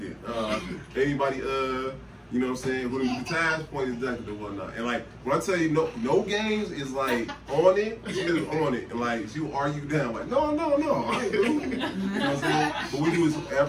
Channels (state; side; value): identical; both; correlation 1.00